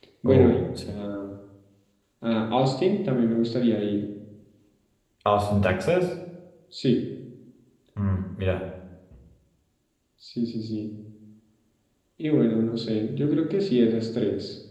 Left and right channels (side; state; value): both; identical; correlation 1.00